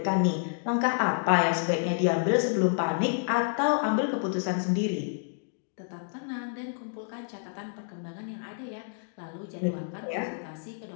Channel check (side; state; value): right; silent; digital silence